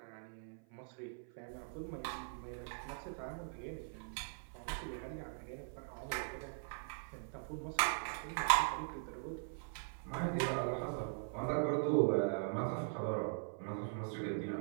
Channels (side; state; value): left; silent; 50 dB below the other